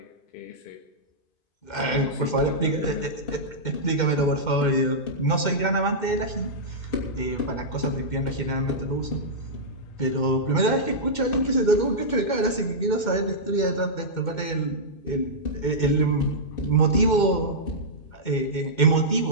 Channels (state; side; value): late; right; 2.1 ms